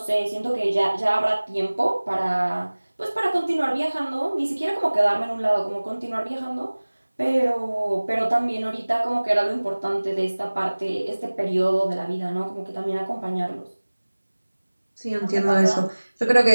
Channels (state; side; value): inverted; both; correlation -1.00